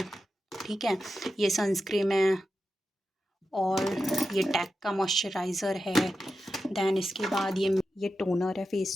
ठीक है। ये सनस्क्रीन है, और ये टैक का मॉइस्चराइज़र है। दैन इसके बाद ये टोनर है, फेस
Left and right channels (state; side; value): normal; both; correlation 0.90